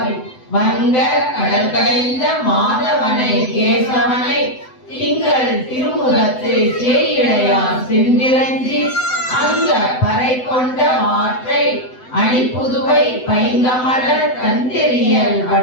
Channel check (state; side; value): late; right; 7.9 ms